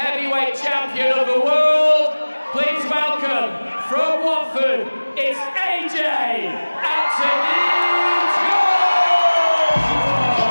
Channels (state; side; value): inverted; both; correlation -1.00